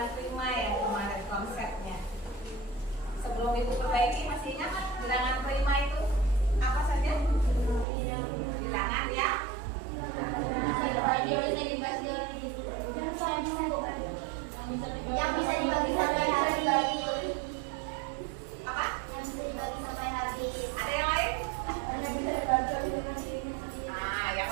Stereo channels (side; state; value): left; drops out; at 7.9 s